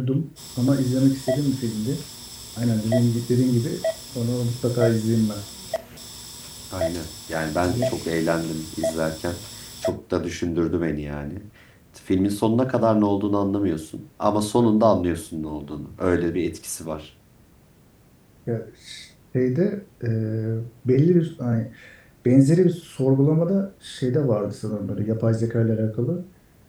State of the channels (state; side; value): identical; both; correlation 1.00